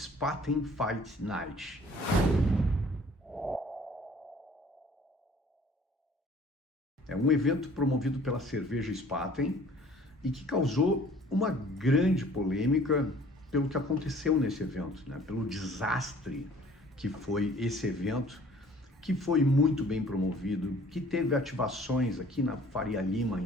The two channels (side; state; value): both; normal; correlation 0.53